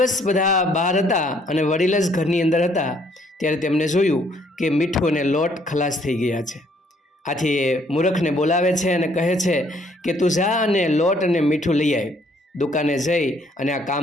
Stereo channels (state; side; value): normal; both; correlation 0.65